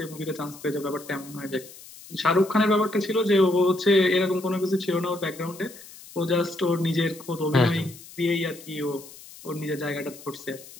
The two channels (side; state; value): left; noise; hiss, 18 dB below the sound